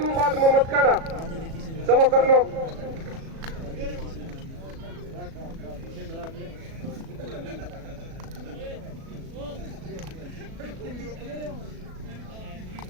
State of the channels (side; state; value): left; late; 37 ms